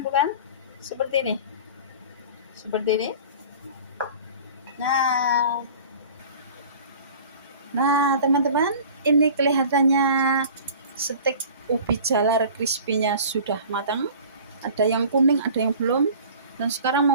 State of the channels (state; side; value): inverted; both; correlation -0.43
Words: bukan? Seperti ini. Nah, teman-teman, ini kelihatannya steak ubi jalar crispy-nya sudah matang. Ada yang kuning, ada yang belum. Dan sekarang